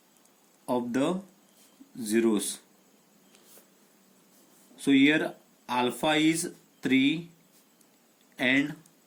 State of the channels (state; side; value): identical; both; correlation 1.00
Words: of the zeros. So here alpha is 3 and